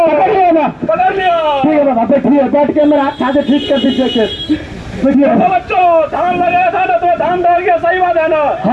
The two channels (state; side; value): identical; both; correlation 1.00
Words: पकड़ लिया ना? पकड़ लिया। ठीक है बाबा, बैठिए, बैठ के मेरा हाथ से ठीक कर दीजिए। बैठिए तो बच्चों, धान लगाया था ना, तो धान डर गया, सही बात है ना?